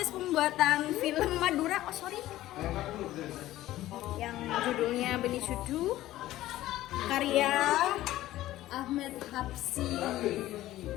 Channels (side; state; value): right; quieter; 15.1 dB